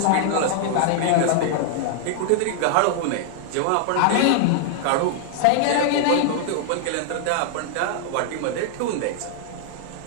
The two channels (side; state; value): both; different; correlation -0.01